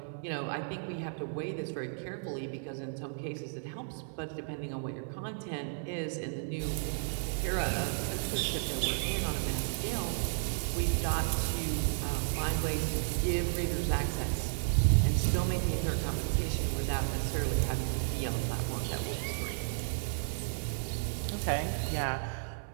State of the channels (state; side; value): silent; left; 56 dB below the other